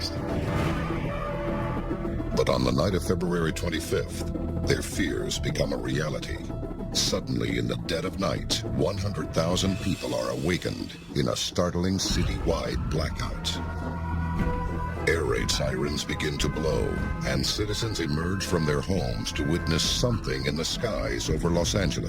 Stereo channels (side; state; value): both; identical; correlation 1.00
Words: But on the night of February 25th, their fears become a reality. Suddenly, in the dead of night, 100,000 people are awakened in a startling citywide blackout. Air raid sirens begin to blow, and citizens emerge from their homes to witness something in the skies over Los